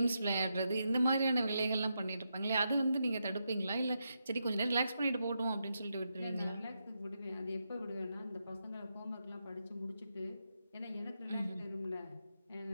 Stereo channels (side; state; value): both; inverted; correlation -0.84